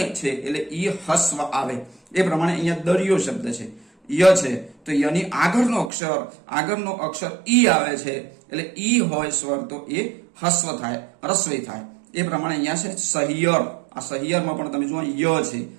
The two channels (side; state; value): left; drops out; at 5.9 s